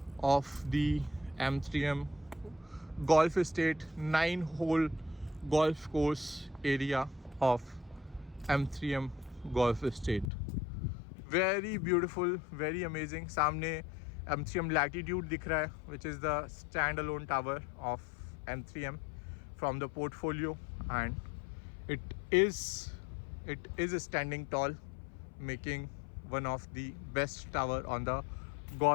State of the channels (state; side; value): drops out; right; at 10.3 s